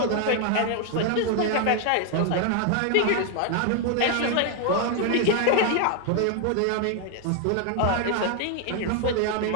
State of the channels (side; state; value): both; different; correlation 0.01